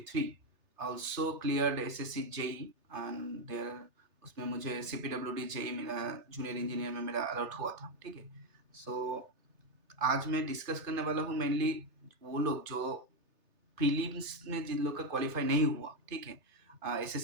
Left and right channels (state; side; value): late; left; 3.3 ms